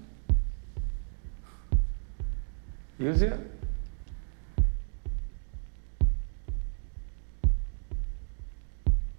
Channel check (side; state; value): left; silent; 56 dB below the other